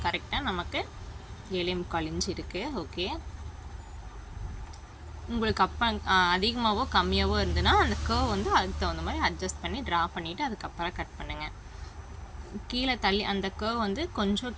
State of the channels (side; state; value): both; identical; correlation 1.00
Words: கரெக்டாக நமக்கு 7.25 இன்ச் இருக்குது. ஓகே, உங்களுக்கு அப்போ அதிகமாகவோ கம்மியாகவோ இருந்ததுன்னா அந்த கர்வ் வந்து அதுக்கு தகுந்த மாதிரி அட்ஜஸ்ட் பண்ணி ட்ரா பண்ணிவிட்டு அதுக்கப்புறம் கட் பண்ணுங்கள். கீழே தள்ளி அந்த கர்வ் வந்து கொஞ்சம்